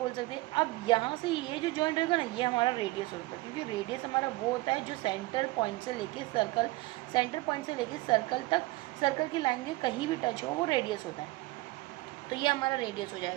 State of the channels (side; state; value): left; quieter; 20.5 dB